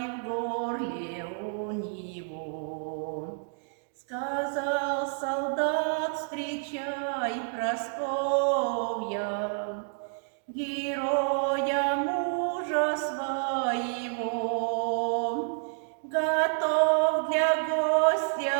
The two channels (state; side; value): silent; left; digital silence